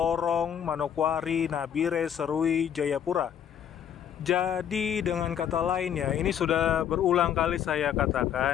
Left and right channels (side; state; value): right; quieter; 9.1 dB